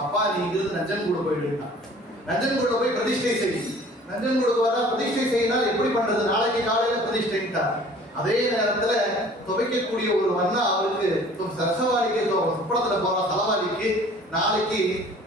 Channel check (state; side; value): normal; both; correlation 0.50